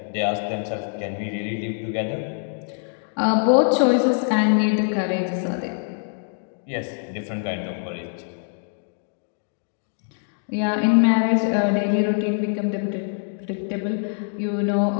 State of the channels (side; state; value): right; silent; 63 dB below the other